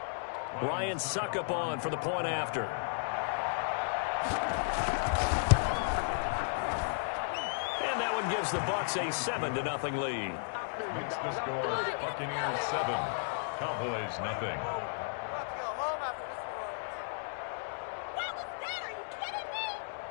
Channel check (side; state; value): right; silent; digital silence